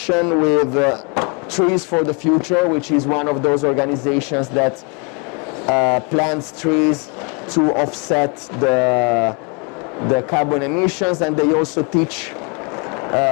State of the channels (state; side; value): quieter; right; 34.0 dB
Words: with Trees for the Future, which is one of those organizations that plants trees to offset the carbon emissions, and they also teach